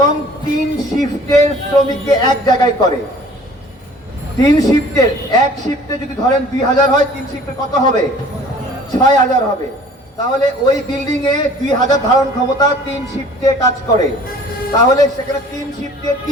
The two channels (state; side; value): normal; both; correlation 0.50